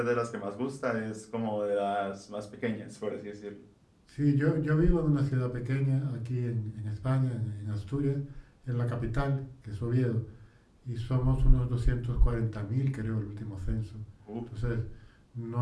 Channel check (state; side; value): identical; both; correlation 1.00